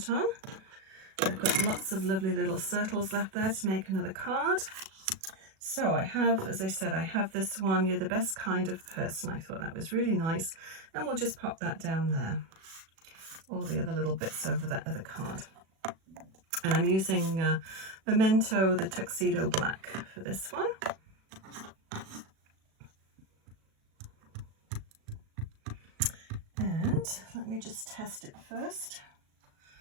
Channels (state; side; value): late; left; 37 ms